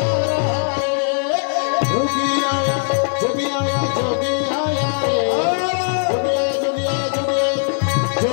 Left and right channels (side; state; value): right; silent; digital silence